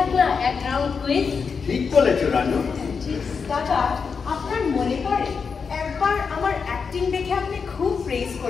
না এক রাউন্ড কুইজ। ঠিক বলেছো রানু। দাদা, আপনার মনে পড়ে একবার আমার অ্যাক্টিং দেখে আপনি খুব প্রেজ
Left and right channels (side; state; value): right; quieter; 5.6 dB